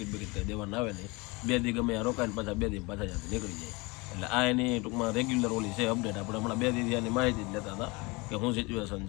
બિકિટ કંઈ દેવાના આવે નહીં. 2 દી ગમે ત્યાં રોકાય ને પાછા 2 દી પાછા ત્યાંથી નીકળી જાય. એટલે આ એની ટૂંકમાં રેગ્યુલર ઓલી છે અપડેટ. આપણે હમણાં 2 દી ત્યાંની માહિતી જ લેતા હતા કે શું સિચ્યુએશન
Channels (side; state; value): right; quieter; 25.8 dB